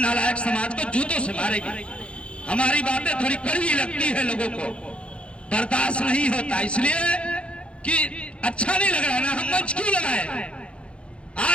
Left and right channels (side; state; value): right; late; 0.059 ms